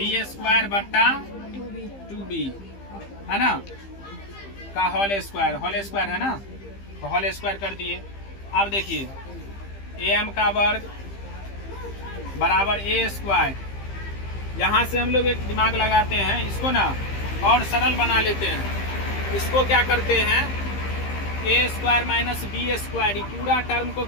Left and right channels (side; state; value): right; late; 15 ms